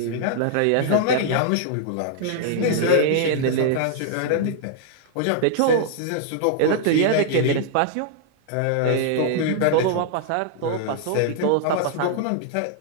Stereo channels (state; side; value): different; both; correlation -0.01